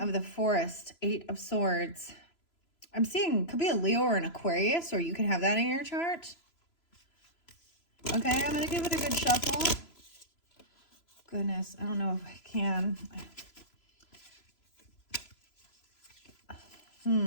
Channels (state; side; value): late; right; 3.0 ms